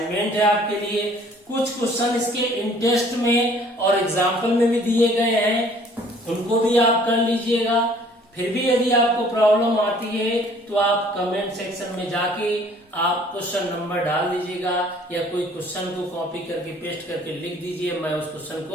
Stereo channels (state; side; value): normal; both; correlation 0.56